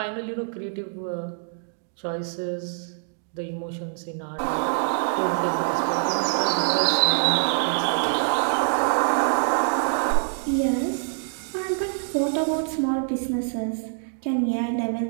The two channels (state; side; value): silent; left; digital silence